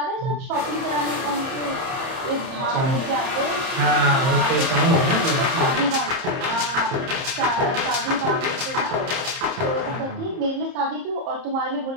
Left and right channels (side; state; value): left; late; 30 ms